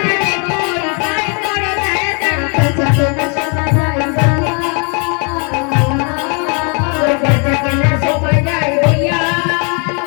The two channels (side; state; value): right; quieter; 36.2 dB